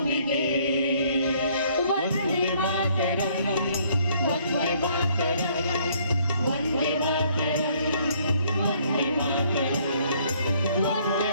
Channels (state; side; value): inverted; both; correlation -0.64